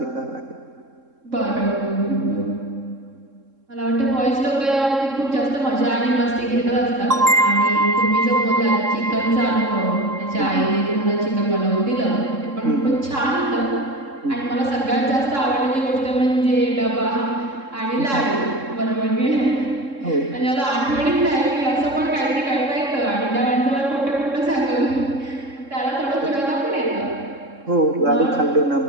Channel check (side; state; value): left; late; 3.7 ms